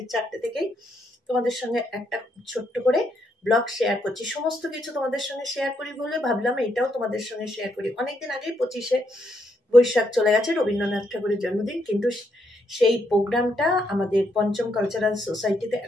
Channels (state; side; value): normal; both; correlation 0.76